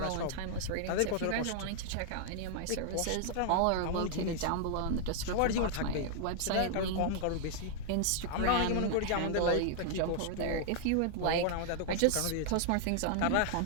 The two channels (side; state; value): both; different; correlation 0.00